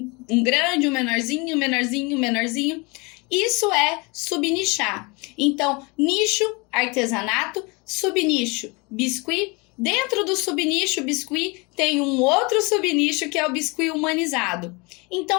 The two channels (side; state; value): right; quieter; 27.9 dB